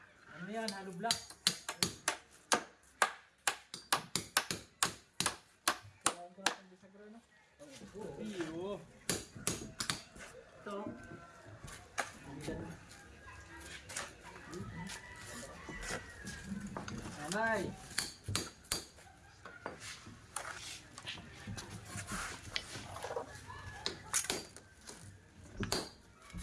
Ano yan? Halo block. Sirahin ko natin bisagro, no? Iyo. Ito. Nanay.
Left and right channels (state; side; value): identical; both; correlation 1.00